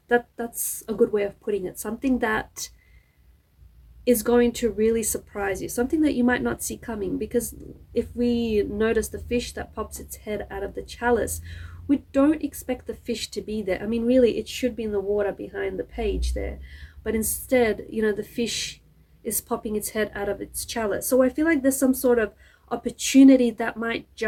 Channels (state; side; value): identical; both; correlation 1.00